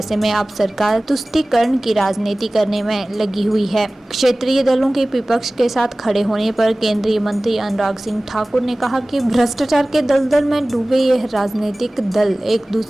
में अब सरकार तुष्टीकरण की राजनीति करने में लगी हुई है। क्षेत्रीय दलों के विपक्ष के साथ खड़े होने पर केंद्रीय मंत्री अनुराग सिंह ठाकुर ने कहा कि भ्रष्टाचार के दलदल में डूबे यह राजनीतिक दल एक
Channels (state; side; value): normal; both; correlation 0.98